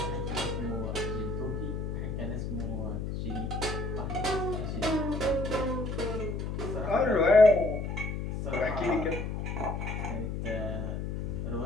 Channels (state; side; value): noise; left; hum, 3 dB below the sound